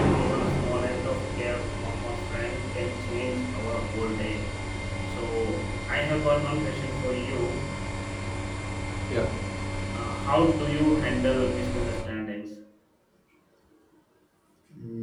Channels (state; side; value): identical; both; correlation 1.00